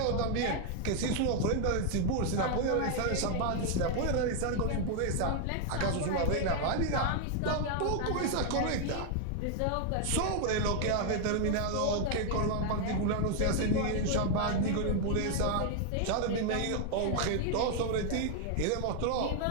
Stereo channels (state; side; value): different; both; correlation 0.00